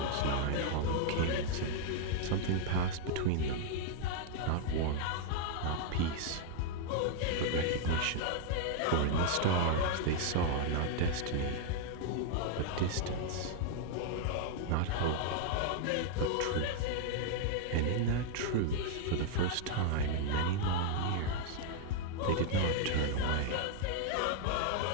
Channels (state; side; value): different; both; correlation 0.00